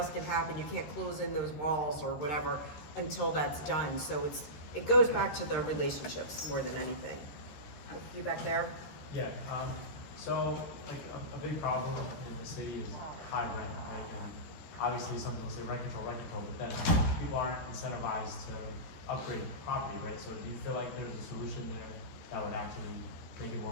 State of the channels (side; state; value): right; late; 13 ms